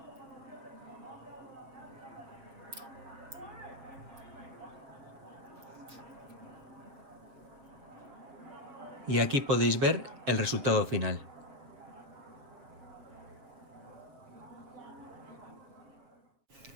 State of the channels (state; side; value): late; left; 7.4 ms